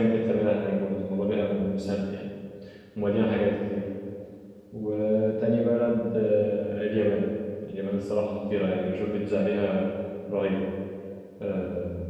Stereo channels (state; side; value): identical; both; correlation 1.00